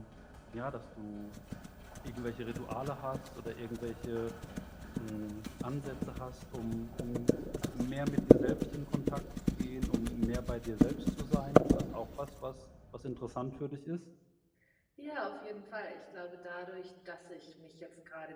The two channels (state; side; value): identical; both; correlation 1.00